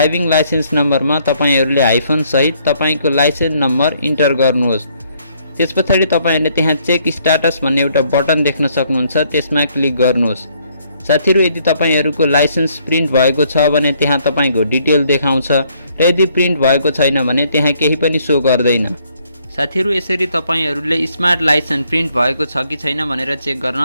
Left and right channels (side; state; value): both; inverted; correlation -0.68